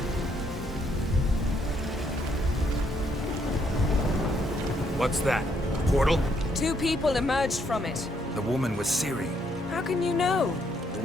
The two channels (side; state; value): both; normal; correlation 0.72